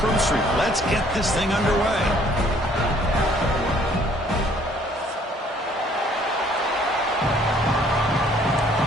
Let's get this thing underway.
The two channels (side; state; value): both; normal; correlation 0.60